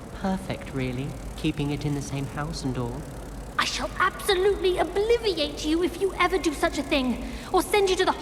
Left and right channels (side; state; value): both; identical; correlation 1.00